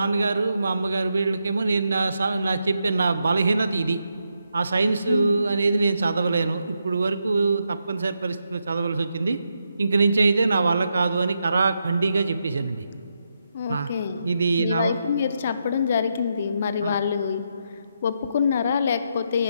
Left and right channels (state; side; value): inverted; both; correlation -0.82